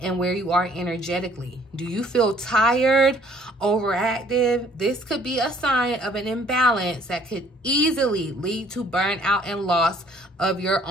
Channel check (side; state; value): both; normal; correlation 0.58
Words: and where you are energetically. Do you feel tired, overactive? This could be a sign of an imbalance that could easily lead to burnout and loss of your